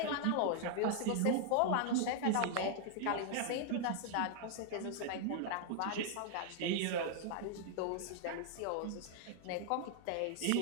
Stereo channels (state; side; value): different; both; correlation 0.00